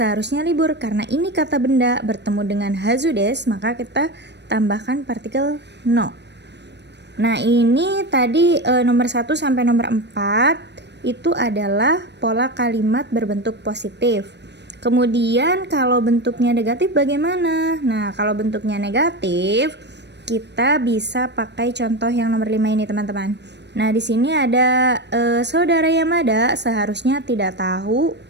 libur. Karena ini kata benda bertemu dengan hazu desu, maka kita tambahkan partikel no. Nah, ini tadi nomor 1 sampai nomor 4 itu adalah pola kalimat berbentuk positif. Kemudian kalau bentuknya negatif bagaimana? Nah, kalau bentuknya negatif kita bisa pakai contoh yang nomor 5 ini teman-teman. Nah, di sini ada saudara Yamada seharusnya tidak tahu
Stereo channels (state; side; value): late; left; 0.50 ms